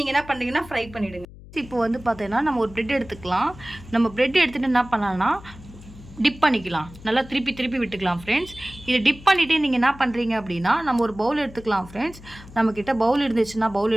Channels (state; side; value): noise; left; hum, 18 dB below the sound